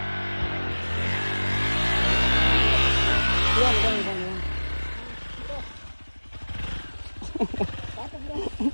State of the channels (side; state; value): both; inverted; correlation -1.00